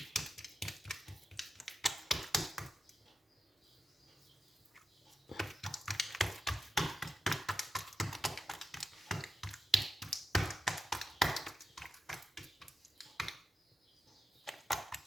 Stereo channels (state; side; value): normal; both; correlation 0.90